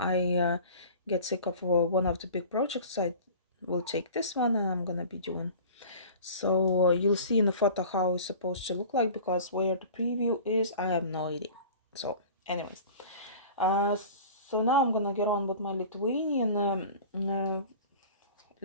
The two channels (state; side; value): inverted; both; correlation -0.40